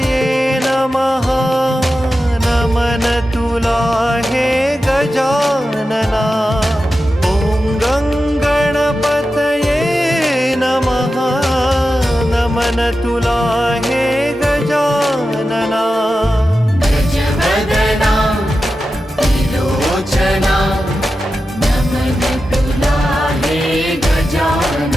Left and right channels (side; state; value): both; normal; correlation 0.92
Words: नमः नमन तुला हे गजानना। ॐ गणपतये नमः नमन तुला हे गजानना। गजवदना त्रिलोचना नमन तुला हे